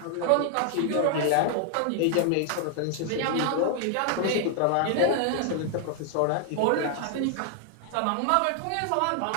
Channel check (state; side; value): different; both; correlation 0.00